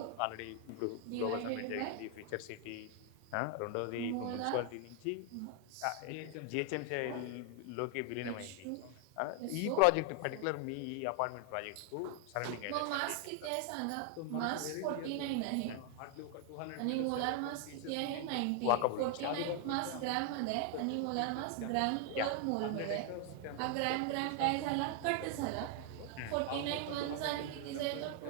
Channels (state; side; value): different; both; correlation 0.00